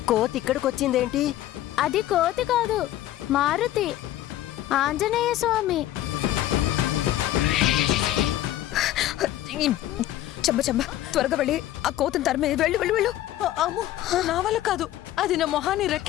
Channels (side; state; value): right; quieter; 13.6 dB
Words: కోతి ఇక్కడికొచ్చిందేంటి? అది కోతి కాదు, మారుతి, ఆంజనేయ స్వామి. చెంబ త్వరగా వెళ్ళి ఆ కోతిని తరిమే. వెళ్ళు వెళ్ళు వెళ్ళు. అమ్మో, నా వల్ల కాదు. అది నా మొహాన్ని